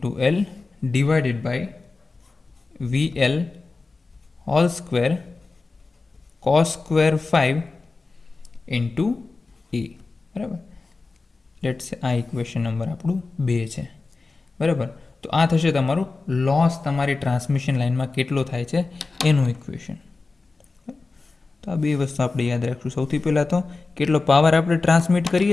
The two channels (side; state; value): right; quieter; 3.8 dB